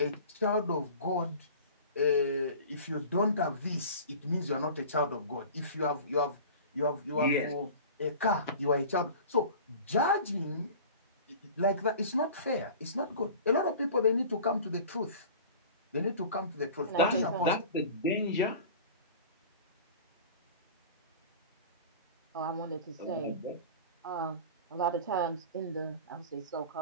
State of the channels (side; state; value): both; inverted; correlation -0.39